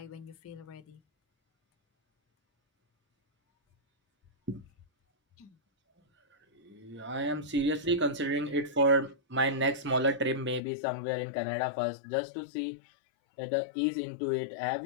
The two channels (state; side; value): drops out; right; at 10.6 s